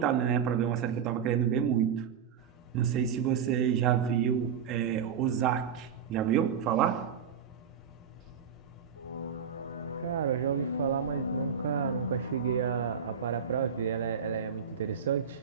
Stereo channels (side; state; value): left; quieter; 7.4 dB